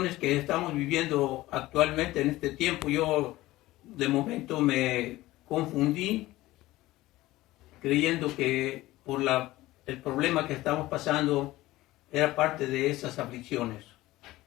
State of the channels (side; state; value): right; quieter; 17.5 dB